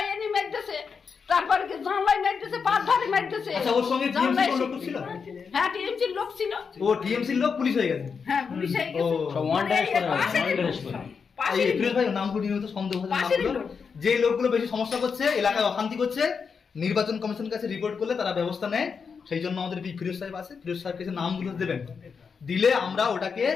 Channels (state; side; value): quieter; right; 5.8 dB